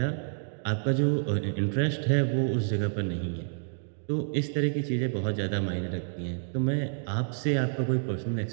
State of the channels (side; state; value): left; silent; digital silence